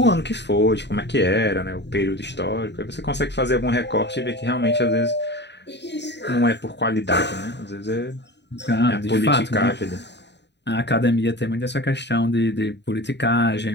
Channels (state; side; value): late; right; 0.50 ms